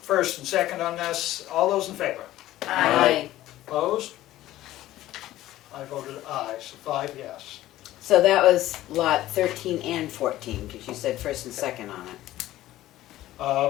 first and second on this. All those in favor? Aye. Opposed? I voted aye, so 5 yes. So that was lot 13 and 14, because you said first and second on it.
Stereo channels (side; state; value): right; quieter; 14.9 dB